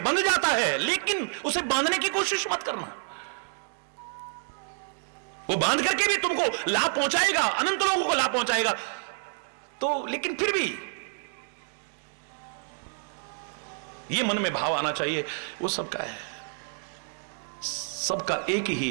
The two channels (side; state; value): left; silent; digital silence